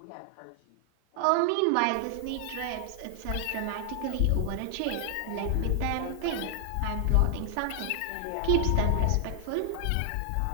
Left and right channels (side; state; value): both; different; correlation 0.00